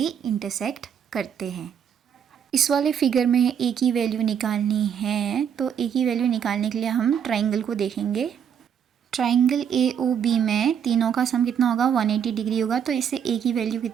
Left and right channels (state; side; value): quieter; left; 8.2 dB